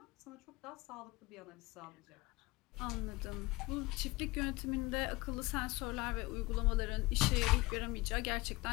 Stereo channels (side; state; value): right; quieter; 22.1 dB